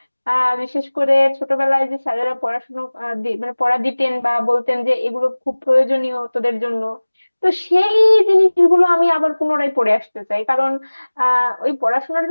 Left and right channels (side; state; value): both; inverted; correlation -1.00